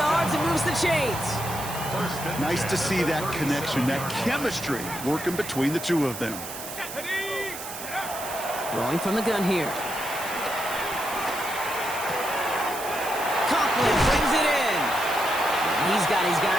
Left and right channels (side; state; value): right; noise; hiss, 10 dB below the sound